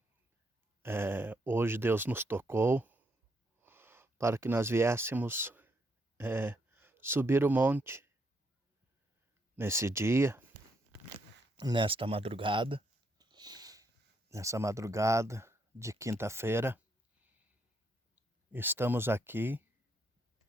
hoje Deus nos tocou para que nós viéssemos subir o monte nesse dia, nessa madrugada de quinta-feira. Estamos aqui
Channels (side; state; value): both; normal; correlation 0.75